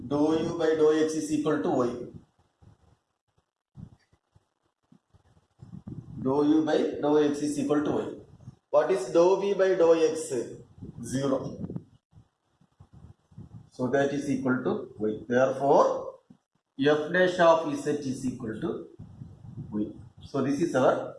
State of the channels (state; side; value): identical; both; correlation 1.00